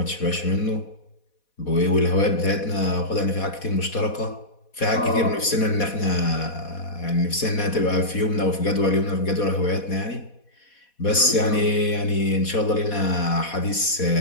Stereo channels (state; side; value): late; right; 4.1 ms